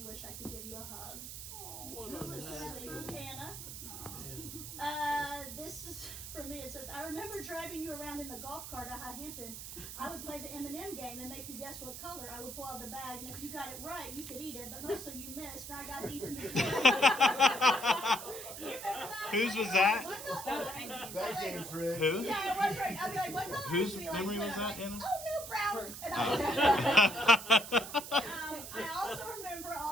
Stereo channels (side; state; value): right; noise; hiss, 9 dB below the sound